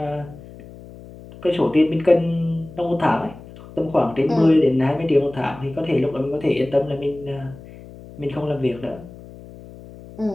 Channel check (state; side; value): noise; left; hum, 18 dB below the sound